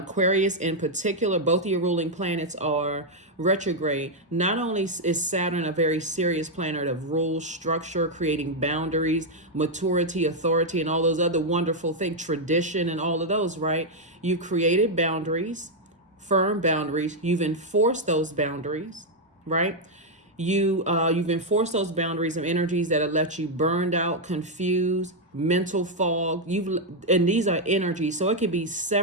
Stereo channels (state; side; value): normal; both; correlation -0.01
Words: in particular, both of your ruling planets are retrograde. Not only is Saturn a very serious planet of rules, structure, creating boundaries, maturity, authority, and all those other wonderful things, tradition and all of those, right? You created boundaries, firm boundaries. You've enforced those boundaries, right? You've enforced those boundaries of energies that have left you burned out, confused, mental fog. And these are energies, so it could be